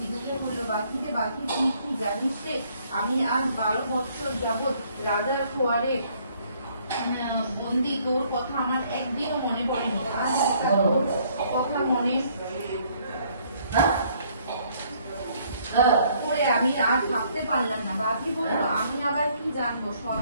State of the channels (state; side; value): inverted; both; correlation -0.64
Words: আমি আজ 12 বছর যাবৎ রাজার খোয়ারে বন্দি, তোর কথা আমার একদিনও মনে পড়েনি। আজ তোর কথা মনে করে আমি আর থাকতে পারলাম না। বাকি বললো, আমি আবার কি জানবো,